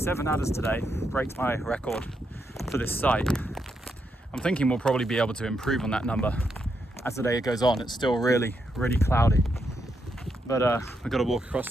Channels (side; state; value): both; normal; correlation 0.81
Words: adders today, breaks my record for this site. I'm thinking we'll probably be able to improve on that number as the day goes on. It's still really cloudy. But we've got to walk across